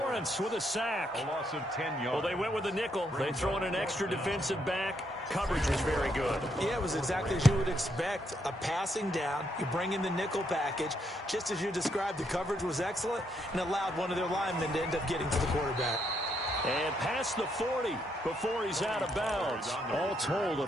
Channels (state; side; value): normal; both; correlation 0.76